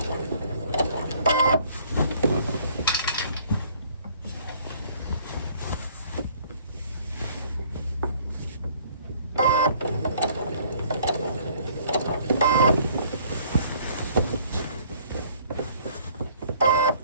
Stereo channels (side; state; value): both; inverted; correlation -0.58